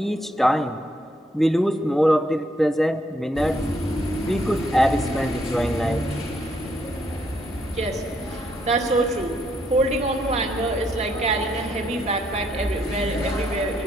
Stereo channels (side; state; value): both; normal; correlation 0.73